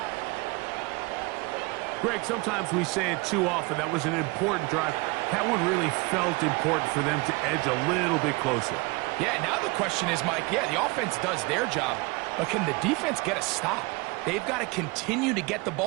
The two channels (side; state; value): left; quieter; 25.9 dB